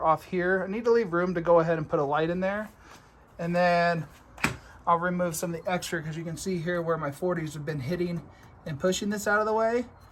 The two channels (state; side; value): identical; both; correlation 1.00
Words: off here. I need to leave room to go ahead and put a light in there. And then I'll remove some of the extra, because you can see here where my 40s have been hitting and pushing this out of the way.